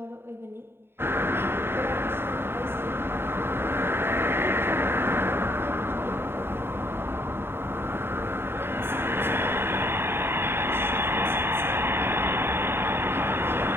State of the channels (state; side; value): late; left; 0.11 ms